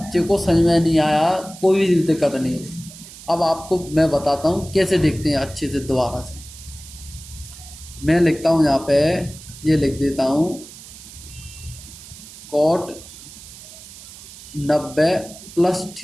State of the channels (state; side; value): noise; right; hiss, 17 dB below the sound